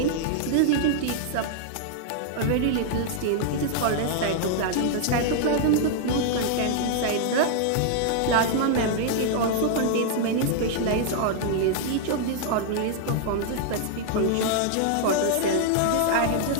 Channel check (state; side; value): different; both; correlation -0.01